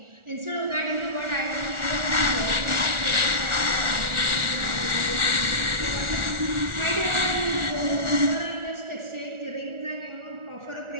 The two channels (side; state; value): left; late; 1.4 ms